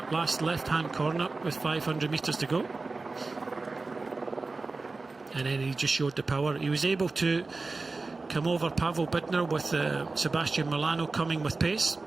last left-hand corner with 500 metres to go. And then he just showed the power. He was able to come over Pavel Bidner with Sebastian Milano coming with pace.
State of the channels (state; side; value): quieter; left; 3.7 dB